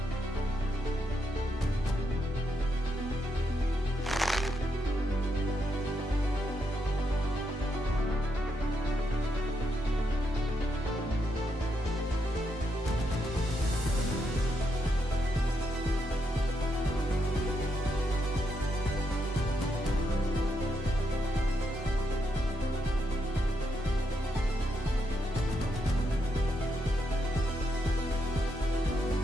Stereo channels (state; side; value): normal; both; correlation 0.80